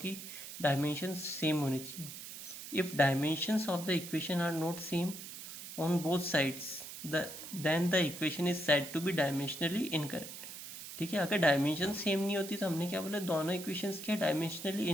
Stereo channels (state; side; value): noise; right; hiss, 11 dB below the sound